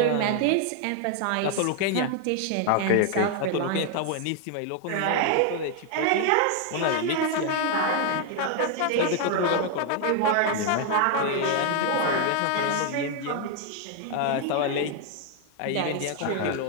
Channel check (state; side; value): different; both; correlation 0.00